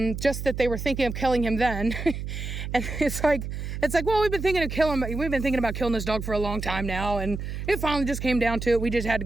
just that they were thinking of killing him then. And it's like, well, we've been thinking about killing this dog for a long time now, and it finally just came down to it. We just had to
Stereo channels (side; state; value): right; noise; hum, 6 dB below the sound